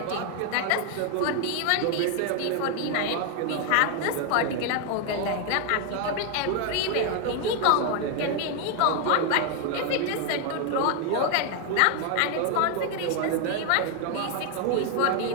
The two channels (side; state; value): both; different; correlation 0.01